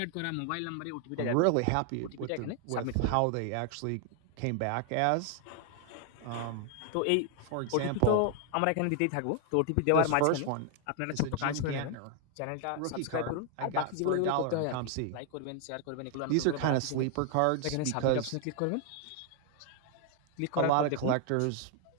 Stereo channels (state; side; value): different; both; correlation 0.00